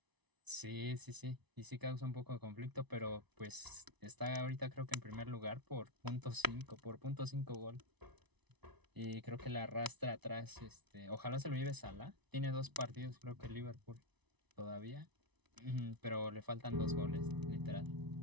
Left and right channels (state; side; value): late; left; 1.0 ms